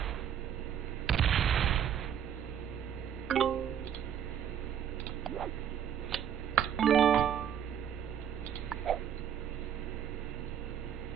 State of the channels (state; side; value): quieter; left; 9.1 dB